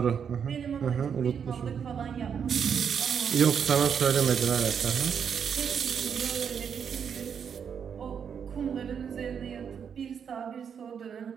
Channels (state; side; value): quieter; left; 7.3 dB